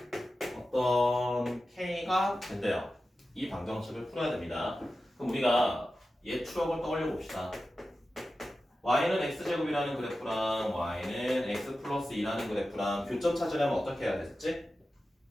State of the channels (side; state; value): both; normal; correlation 0.93